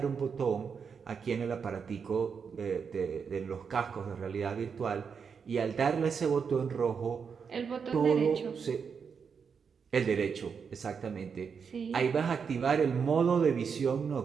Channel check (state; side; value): quieter; left; 6.2 dB